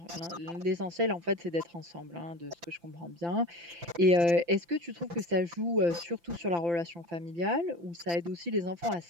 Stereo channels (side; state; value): left; late; 5.9 ms